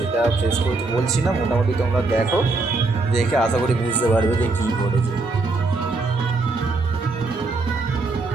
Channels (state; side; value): quieter; left; 3.5 dB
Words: ফেস করতে বলছি না, মোটামুটি তোমরা দেখো, দেখে আশা করি বুঝতে পারবে যে কী ঘটেছে।